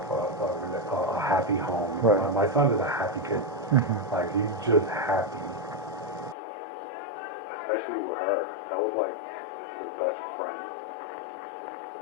a happy home. Right. My son is a happy kid. Mm-hmm. Like, he's just happy. Especially with her. That was like his best friend.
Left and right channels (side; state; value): right; drops out; at 6.4 s